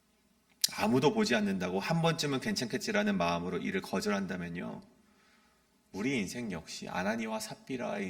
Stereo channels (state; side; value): identical; both; correlation 1.00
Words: 아무도 보지 않는다고 한 번쯤은 괜찮겠지라는 마음으로 이를 거절한다면요, 우리 인생 역시 아나니와 삽비라의